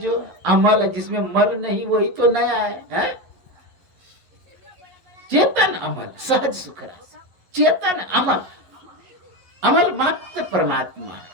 अमल है, जिसमें मल नहीं, वही तो नया है? चेतन अमल सहज सुख राशि। चेतन अमल, अमल मात्र परमात्मा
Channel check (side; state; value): left; late; 11 ms